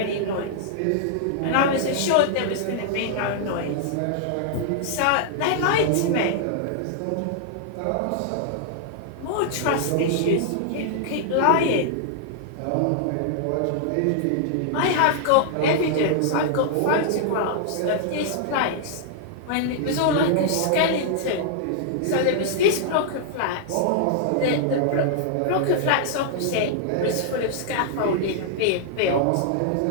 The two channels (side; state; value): both; different; correlation -0.01